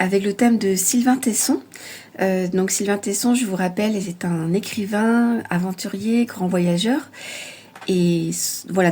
le thème de Sylvain Tesson. Donc Sylvain Tesson, je vous rappelle, est un écrivain, aventurier, grand voyageur. Et voilà,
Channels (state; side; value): identical; both; correlation 1.00